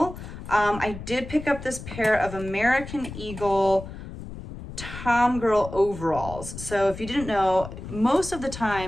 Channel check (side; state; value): left; noise; rumble, 11 dB below the sound